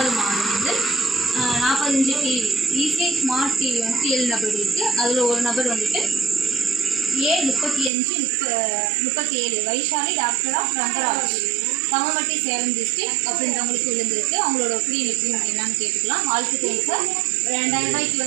மாதம் வந்து 45 டிவி ஈஸி ஸ்மார்ட் டிவி வந்து 7 நபர்களுக்கு. அதில் ஒரு நபர் வந்துட்டு A3537 Vaishali daughter of Rangaraj தமமட்டி சேலம் டிஸ்ட்ரிக்ட் அப்படின்றவங்களுக்கு விழுந்திருக்கு. அவங்களோட ஒப்பீனியன் எப்படி என்னன்னு கேட்டுக்கலாம். வாழ்த்துக்கள் சார். 2000 ரூபாய்க்கு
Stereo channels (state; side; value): drops out; left; at 7.9 s